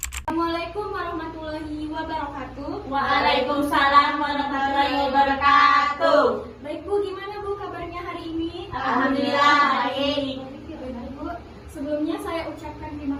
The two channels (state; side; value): identical; both; correlation 1.00